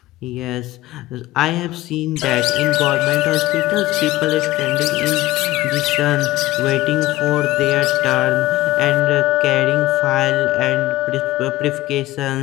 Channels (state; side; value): quieter; right; 17.2 dB